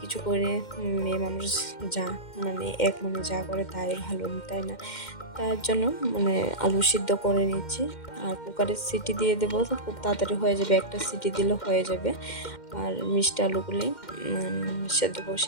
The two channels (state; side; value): late; right; 2.1 ms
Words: করে মেয়ে মানুষ যা মানে এক মনে যা করে তাই ভালো, তাই না? তার জন্য মানে আলু সিদ্ধ করে নিচ্ছি, আর কুকারের সিটি দিয়ে দেবো তো খুব তাড়াতাড়ি হয়ে যাবে, একটা সিটি দিলে হয়ে যাবে। আর মিষ্টি আলুগুলি সেদ্ধ